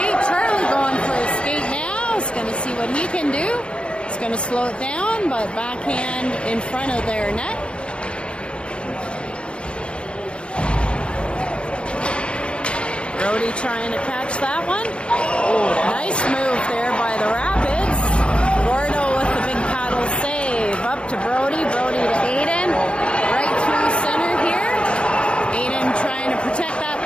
Charlie going for a skate now. He's going to see what he can do. He's going to slow it down, but backhand in front of their net. Brody trying to catch that one. Nice move there by the Rapids. Gordo with the big paddle save. Up to Brody. Brody to Aiden. Right through center here. Aiden trying to protect that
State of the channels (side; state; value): right; late; 0.057 ms